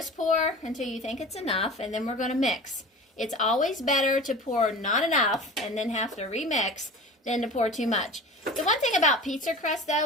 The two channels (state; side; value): normal; both; correlation 0.36